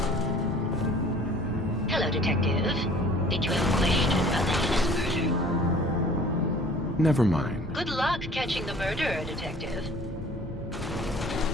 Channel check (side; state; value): both; normal; correlation 0.50